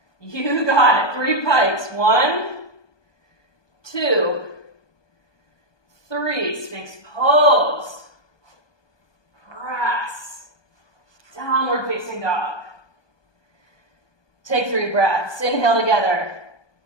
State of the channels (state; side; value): late; right; 1.2 ms